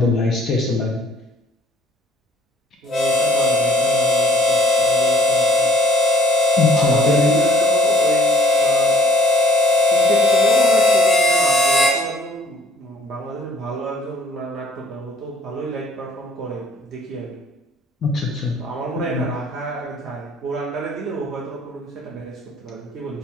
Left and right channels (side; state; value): both; normal; correlation 0.56